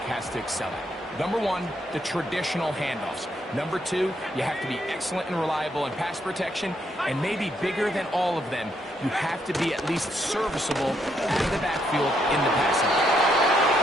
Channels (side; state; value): both; normal; correlation 0.75